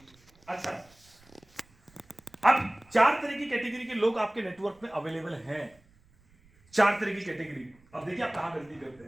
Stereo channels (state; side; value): noise; right; rumble, 30 dB below the sound